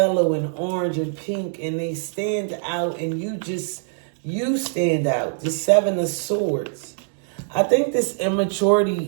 and orange and pink, and they stand out, and you stand out. The Seven of Swords. I think this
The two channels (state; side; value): silent; left; digital silence